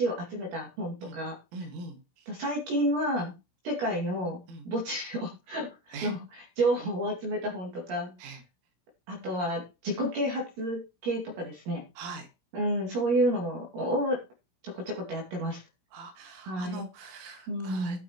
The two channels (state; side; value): late; left; 17 ms